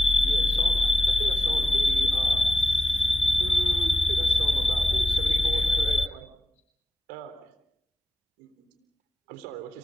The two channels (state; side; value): normal; both; correlation 0.91